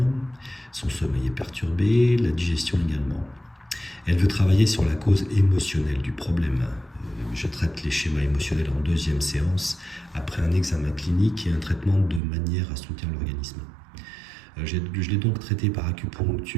son sommeil est perturbé, la digestion également. Elle veut travailler sur la cause émotionnelle du problème. Je traite les schémas émotionnels en deuxième séance, après un examen clinique et un traitement de manière à soutenir l'organisme. Je l'ai donc traité par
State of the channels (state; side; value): drops out; left; at 12.2 s